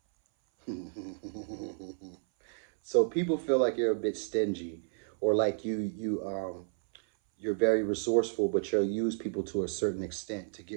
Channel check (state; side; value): silent; left; 57 dB below the other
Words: So people feel like you're a bit stingy, or like you're very resourceful, but you'll use people to a certain extent to